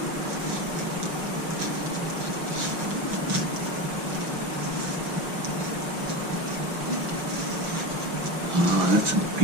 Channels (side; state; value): left; late; 6.0 ms